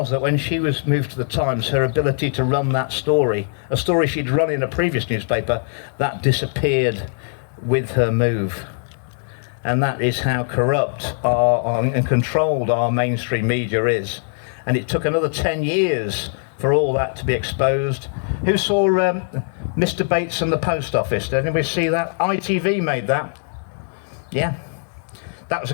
that when she was moved to the Times, her ability to run that story, a story she'd run in a previous newspaper, that disappeared with her move. And that is how corrupt and controlled our mainstream media is. And it took another 10 years for all that to be exposed. Who saw Mr. Bates and the Post Office? Did anybody see that? ITV made that. Yeah. That was a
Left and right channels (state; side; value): silent; right; digital silence